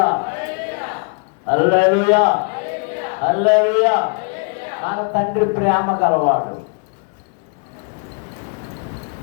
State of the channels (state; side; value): quieter; right; 39.1 dB